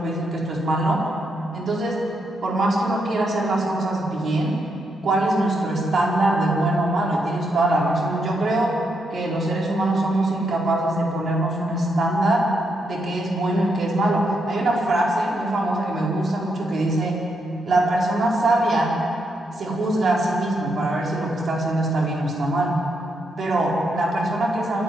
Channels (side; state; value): both; normal; correlation 0.80